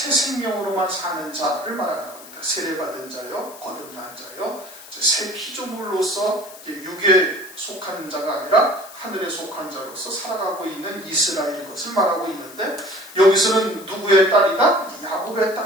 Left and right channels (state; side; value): noise; left; hiss, 18 dB below the sound